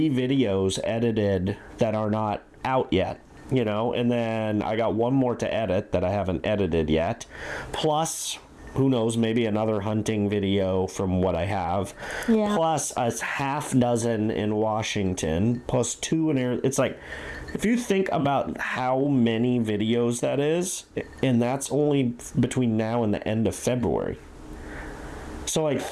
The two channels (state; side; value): identical; both; correlation 1.00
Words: videos edited that are not out yet. You know, and then I got one more to edit that I haven't edited yet. Plus, who knows, maybe another hunting video from what I have. Plus a half dozen in Washington. Plus 2 in Arizona. It's like, if you think about how many videos that is, and that's only between now and the end of February. So, like,